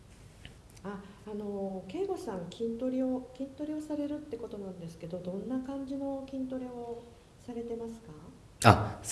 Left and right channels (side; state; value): both; identical; correlation 1.00